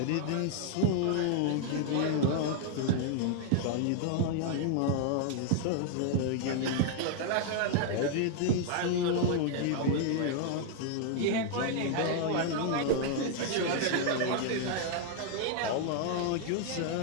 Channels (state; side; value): different; both; correlation 0.00